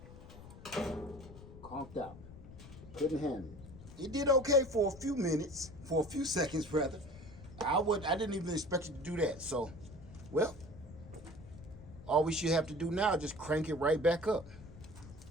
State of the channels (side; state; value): left; noise; rumble, 16 dB below the sound